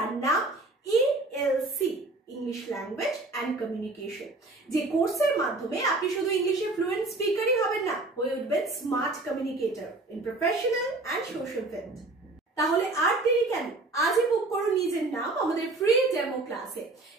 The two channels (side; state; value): left; quieter; 3.1 dB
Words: নাম ELC, English language and communication. যে কোর্সের মাধ্যমে আপনি শুধু ইংলিশে ফ্লুয়েন্ট স্পিকারই হবেন না, হয়ে উঠবেন smart communicator in professional and social field. তাহলে আর দেরি কেন, আজই বুক করুন নিজের নাম আমাদের ফ্রি ডেমো ক্লাসে।